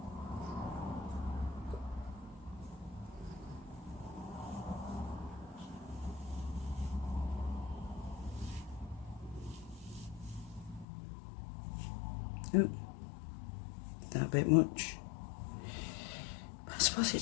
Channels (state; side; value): drops out; right; at 10.9 s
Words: Ooh, that a bit much. But I suppose it